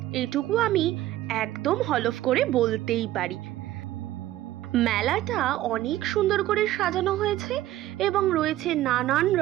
এইটুকু আমি একদম হলফ করে বলতেই পারি। মেলাটা অনেক সুন্দর করে সাজানো হয়েছে এবং রয়েছে নানান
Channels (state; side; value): quieter; left; 14.6 dB